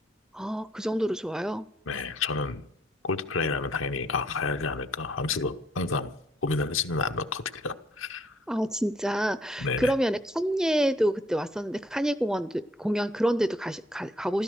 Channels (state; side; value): normal; both; correlation 0.66